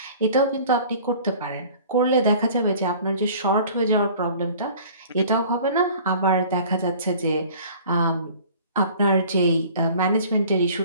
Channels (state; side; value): inverted; both; correlation -0.48